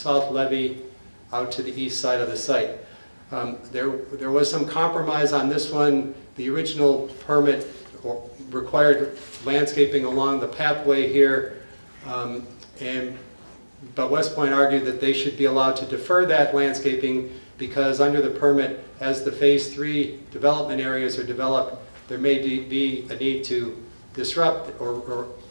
levee out to the east side of the site. There was some compromise on this one. The original permit required landscaping along the pathway here, but Westpoint argued that they should be allowed to defer that landscaping because under the permit, as the Phase 3 development areas are developed, there may be a need to disrupt or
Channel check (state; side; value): inverted; both; correlation -1.00